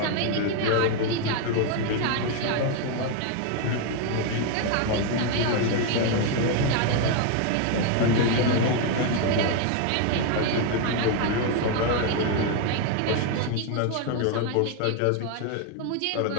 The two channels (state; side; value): different; both; correlation 0.01